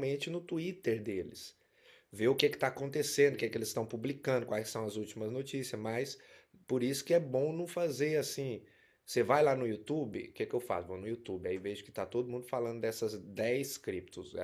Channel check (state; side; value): identical; both; correlation 1.00